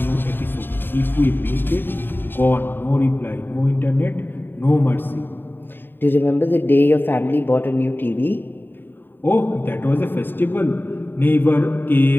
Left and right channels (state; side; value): late; right; 0.096 ms